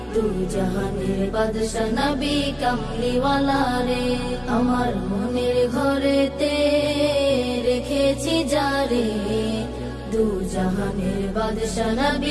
দু জাহানের বাদশা নবী কমলিওয়ালা রে। আমার মনের ঘরেতে রেখেছি যারে, দু জাহানের বাদশা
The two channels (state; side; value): identical; both; correlation 1.00